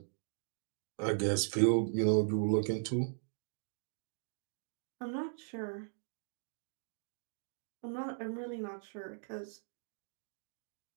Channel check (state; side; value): silent; left; digital silence